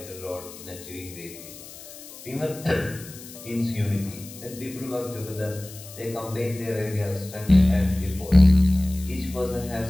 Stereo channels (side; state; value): left; noise; hiss, 16 dB below the sound